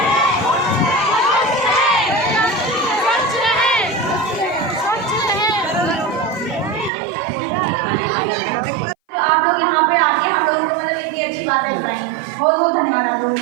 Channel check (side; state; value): left; drops out; at 6.9 s